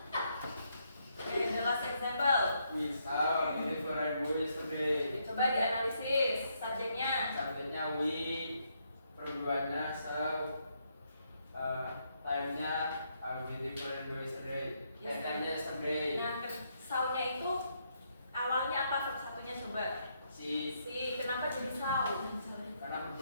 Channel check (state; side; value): inverted; both; correlation -0.76